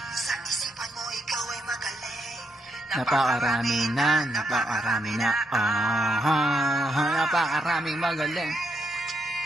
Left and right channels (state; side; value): normal; both; correlation 0.79